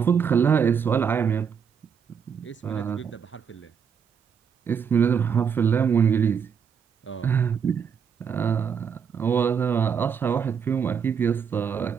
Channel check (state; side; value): quieter; left; 7.0 dB